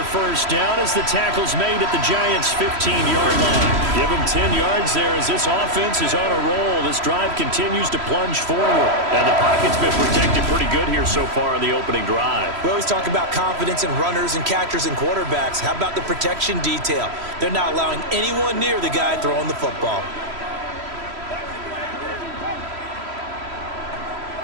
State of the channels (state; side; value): late; left; 3.0 ms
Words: first down as the tackle's made at the Giants' 15-yard line. Give them 10 yards there as this offense is on a roll. This drive continues to plunge forward. And the pocket's been protected pretty good here so far in the opening drive. We always talk about confidence in runners and catchers and quarterbacks. How about the protection detail? They're not allowing anyone near the guy throwing the football.